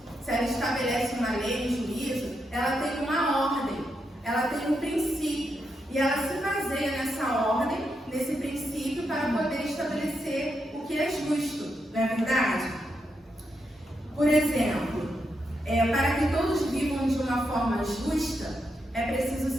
se ela estabelece uma lei, um juízo, ela tem uma ordem, ela tem um princípio. E ela se baseia nessa ordem, nesse princípio, para poder estabelecer o que é justo. Não é verdade? Por exemplo, para que todos vivam de uma forma justa, é preciso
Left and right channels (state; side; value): normal; both; correlation 0.83